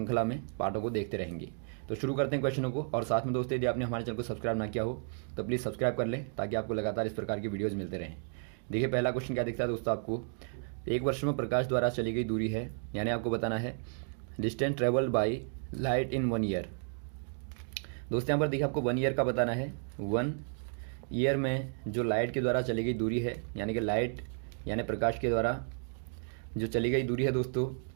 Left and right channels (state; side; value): silent; left; 56 dB below the other